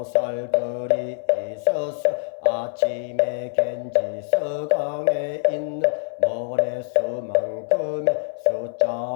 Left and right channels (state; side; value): silent; right; 62 dB below the other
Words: 있어서 아침에 겐지서강에 있는 모래수만큼의